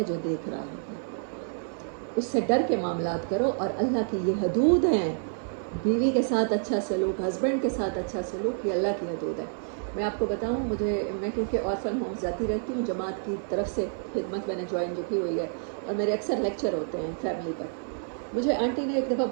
جو دیکھ رہا ہے۔ اس سے ڈر کے معاملات کرو، اور اللہ کی یہ حدود ہیں، بیوی کے ساتھ اچھا سلوک، ہسبینڈ کے ساتھ اچھا سلوک، یہ اللہ کی حدود ہے۔ میں آپ کو بتاؤں، میں کیونکہ آرفن ہوم جاتی رہتی ہوں، جماعت کی طرف سے خدمت میں نے جوائن جو کی ہوئی ہے، اور میرے اکثر لیکچر ہوتے ہیں فیملی پر۔ مجھے آنٹی نے ایک دفعہ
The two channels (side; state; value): left; silent; 59 dB below the other